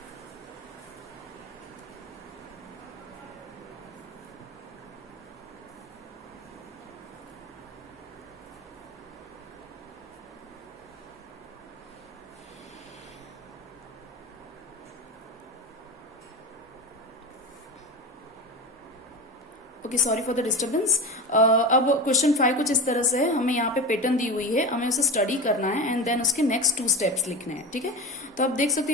Okay, sorry for the disturbance. अब क्वेश्चन 5 कुछ इस तरह से है। हमें यहाँ पे पैटर्न दी हुई है, हमें उसे स्टडी करना है एंड देन उसके नेक्स्ट 2 स्टेप्स लिखने हैं। ठीक है, तो आप देख सकते हो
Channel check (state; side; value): normal; both; correlation 0.25